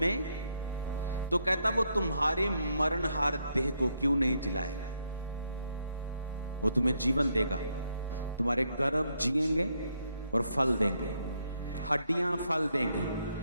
तो कहता वो तुम्हारी मरणहार देह को क्यों नहीं जिलाएगा? वो तुम्हें जीवन देगा, तुम्हारे गर्भ जिएंगे और फल देंगे, हड्डियां फल देंगे,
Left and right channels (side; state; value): both; inverted; correlation -0.77